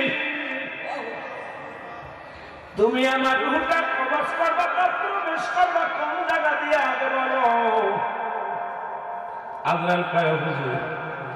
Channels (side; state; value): both; identical; correlation 1.00